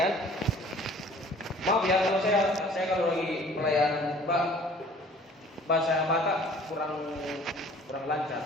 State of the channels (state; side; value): normal; both; correlation 0.51